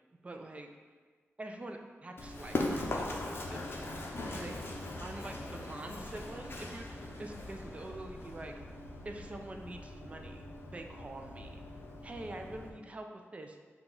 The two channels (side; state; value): both; normal; correlation 0.82